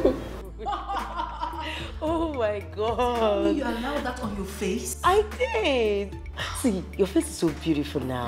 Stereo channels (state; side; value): identical; both; correlation 1.00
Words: Oh my God. You allowed that on your face? I did. See, your face is so beautiful